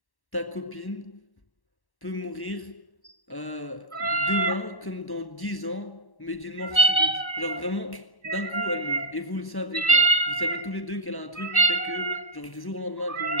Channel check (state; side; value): late; right; 1.1 ms